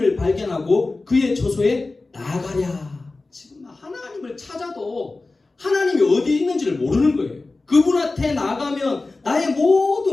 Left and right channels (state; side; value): quieter; right; 3.4 dB